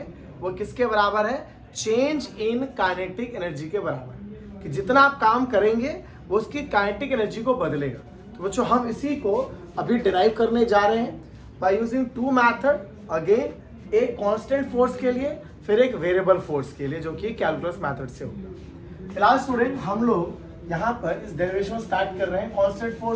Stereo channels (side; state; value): both; identical; correlation 1.00